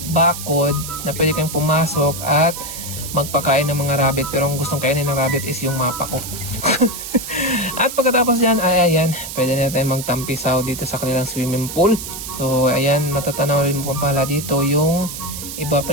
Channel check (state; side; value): noise; right; hiss, 8 dB below the sound